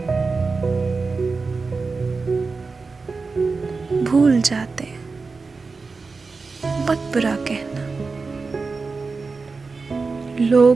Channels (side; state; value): left; quieter; 4.3 dB